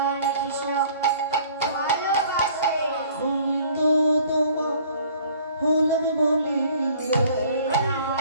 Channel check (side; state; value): both; inverted; correlation -0.54